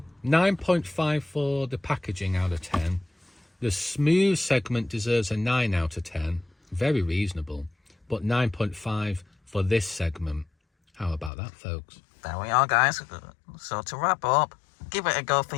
9.5 for the packaging out of 10. The smooth segment deserves a 9 out of 10. Very reasonable. But 9.5 for this segment. How about that, folks? There we are, guys. So to wrap up, give it a go for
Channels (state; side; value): drops out; right; at 11.3 s